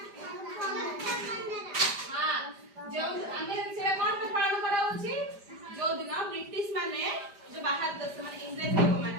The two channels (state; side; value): late; left; 5.0 ms